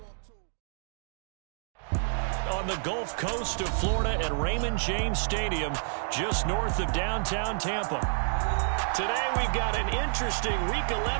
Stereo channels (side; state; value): left; silent; digital silence